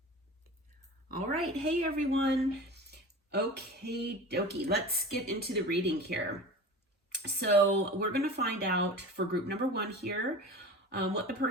All right, hey everyone. Okay, dokie, let's get into the reading here. So we're going to find out for group number 1 here what the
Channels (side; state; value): both; normal; correlation 0.35